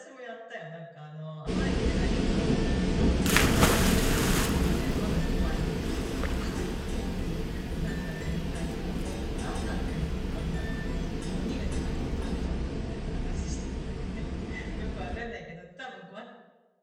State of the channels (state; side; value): identical; both; correlation 1.00